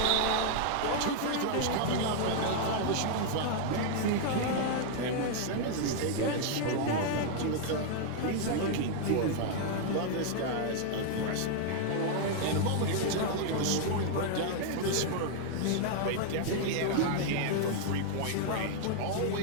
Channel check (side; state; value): both; different; correlation 0.00